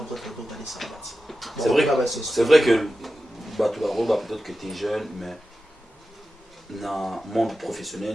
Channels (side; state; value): both; normal; correlation 0.93